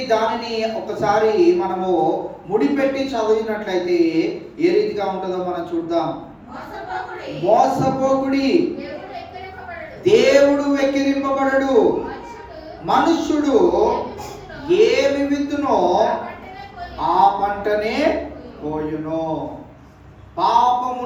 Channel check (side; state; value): both; identical; correlation 1.00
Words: దానిని ఒకసారి మనము ముడిపెట్టి చదివినట్లయితే ఏ రీతిగా ఉంటుందో మనం చూద్దాం. మోసపోకుడి, దేవుడు వెక్కిరింపబడడు. మనుష్యుడు ఏమి విత్తునో ఆ పంటనే పోయును.